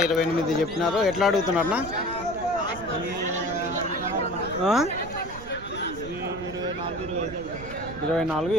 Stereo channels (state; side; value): noise; right; rumble, 14 dB below the sound